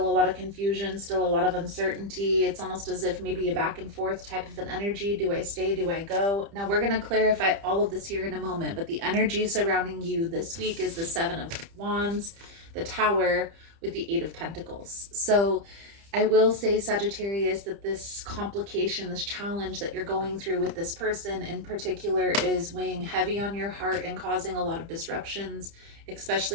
a lot of confusion, still a lot of uncertainty. It's almost as if maybe a back and forth type of an energy. Do I stay? Do I go? Now we're going to clarify all of this here in a moment, but the energy surrounding you this week is the Seven of Wands, the Tower, with the Eight of Pentacles. So I will say, Sagittarius, that this complication, this challenge that you're going through with this person in particular is weighing heavy on your heart and causing a lot of disruptions,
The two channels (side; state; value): left; late; 30 ms